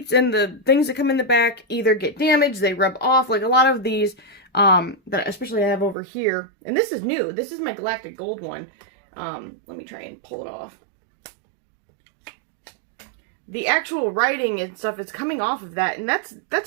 and the things that come in the back either get damaged, they rub off, like a lot of these that especially I have over here. And this is new. This is my Galactic Gold one. Let me try and pull it off. The actual writing and stuff is coming off of that, and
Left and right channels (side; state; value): left; drops out; at 6.0 s